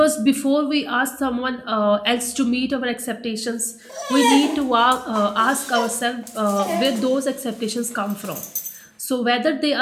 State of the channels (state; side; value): identical; both; correlation 1.00